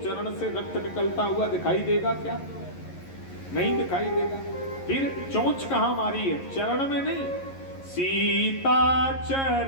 से रक्त निकलता हुआ दिखाई देगा क्या? नहीं दिखाई देगा। फिर चोंच कहां मारी है? चरण में नहीं। सीता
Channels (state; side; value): late; right; 11 ms